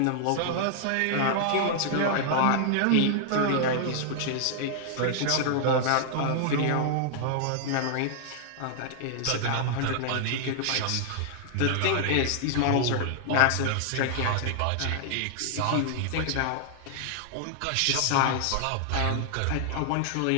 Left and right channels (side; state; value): both; different; correlation -0.01